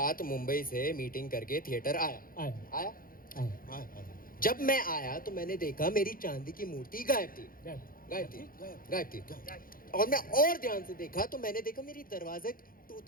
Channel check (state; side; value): late; right; 0.41 ms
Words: मुंबई से मीटिंग करके थिएटर आया। आया आया? जब मैं आया तो मैंने देखा मेरी चांदी की मूर्ति गायब थी। गायब थी। और मैं और ध्यान से देखा तो मैंने देखा मेरी दरवाजे